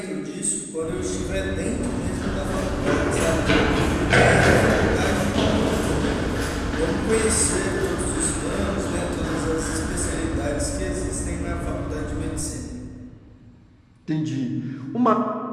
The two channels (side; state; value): both; identical; correlation 1.00